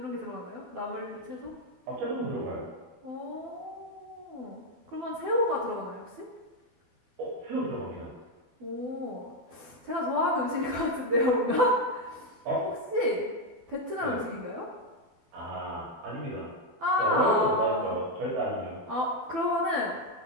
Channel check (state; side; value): late; left; 12 ms